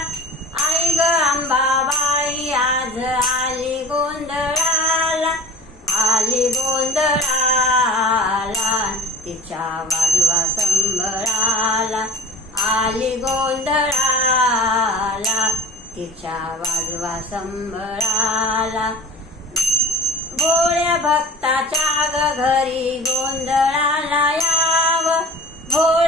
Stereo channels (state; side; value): normal; both; correlation 0.39